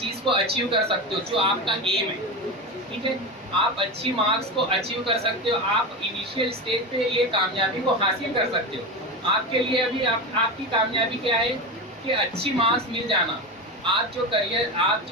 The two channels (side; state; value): both; normal; correlation 0.20